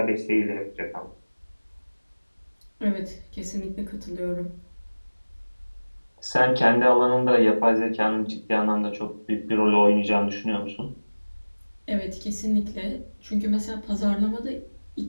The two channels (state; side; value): inverted; both; correlation -1.00